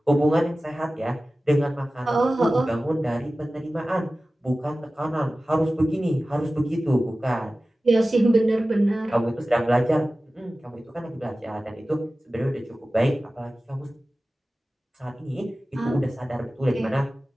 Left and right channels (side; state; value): both; normal; correlation 0.96